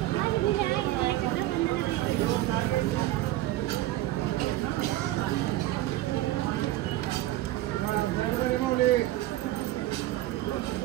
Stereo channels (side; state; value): left; quieter; 15.7 dB